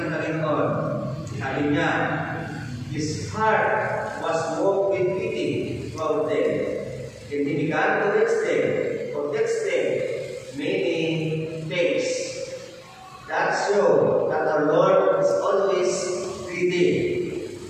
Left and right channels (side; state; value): both; identical; correlation 1.00